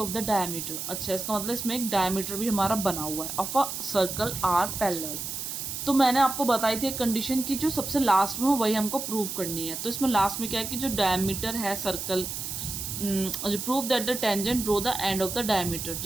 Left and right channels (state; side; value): noise; right; hiss, 5 dB below the sound